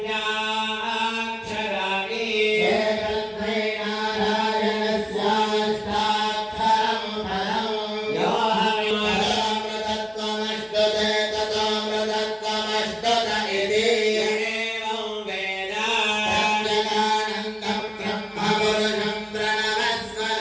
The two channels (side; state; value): both; identical; correlation 1.00